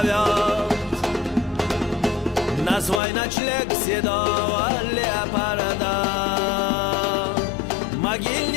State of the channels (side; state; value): right; drops out; at 3.0 s